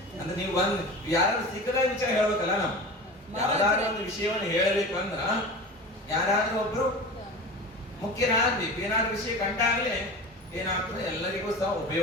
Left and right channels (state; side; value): normal; both; correlation 0.33